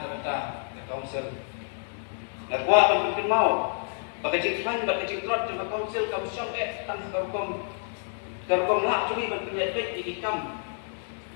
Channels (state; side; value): silent; right; 57 dB below the other